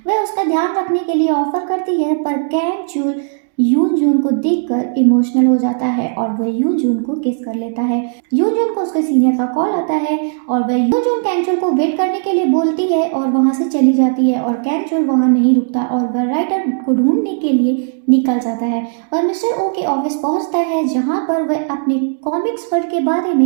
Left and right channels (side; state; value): left; silent; digital silence